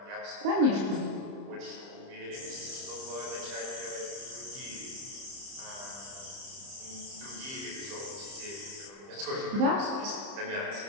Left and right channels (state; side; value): late; left; 30 ms